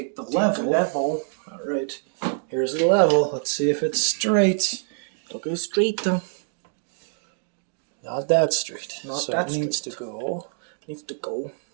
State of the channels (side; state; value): left; silent; 62 dB below the other